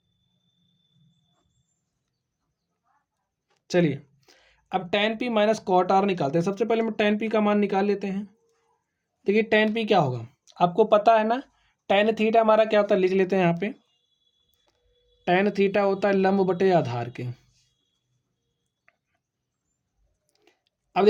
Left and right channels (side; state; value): both; identical; correlation 1.00